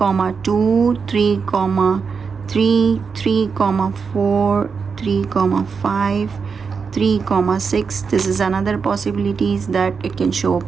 2, 3, 3, 3, 4, 3, 5, 3, 6. This is another possibilities that it can show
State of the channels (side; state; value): left; quieter; 5.6 dB